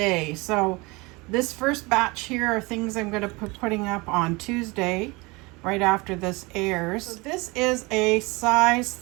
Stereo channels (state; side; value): quieter; left; 25.0 dB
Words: So this first batch here are things I'm going to be putting up on Tuesday right after this airs. So this is a size